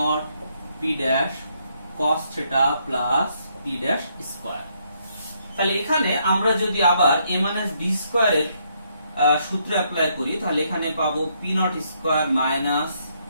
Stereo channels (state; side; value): inverted; both; correlation -0.73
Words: p dash cos theta plus p dash square. তাহলে এখানে আমরা যদি আবার a মাইনাস b স্কয়ারের সূত্র অ্যাপ্লাই করি তাহলে এখানে পাবো p naught square minus